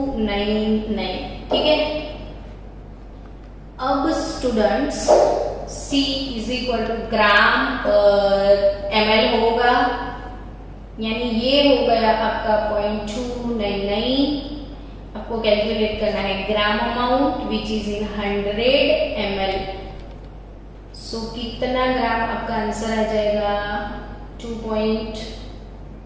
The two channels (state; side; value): identical; both; correlation 1.00